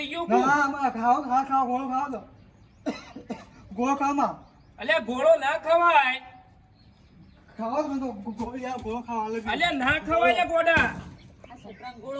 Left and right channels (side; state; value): both; identical; correlation 1.00